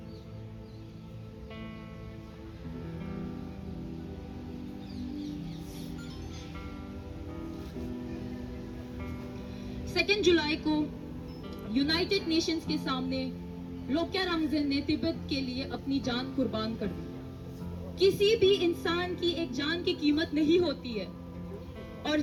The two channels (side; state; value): both; identical; correlation 1.00